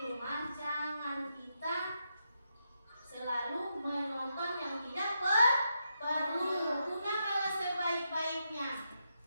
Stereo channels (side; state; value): both; inverted; correlation -0.83